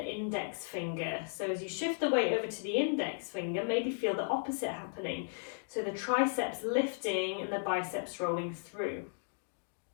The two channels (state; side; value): silent; right; digital silence